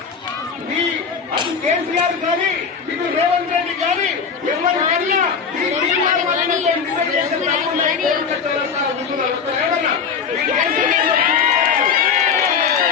మీ అది కేసీఆర్ కానీ ఇది రేవంత్ రెడ్డి కానీ ఎవరికన్నా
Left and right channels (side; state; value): right; quieter; 6.2 dB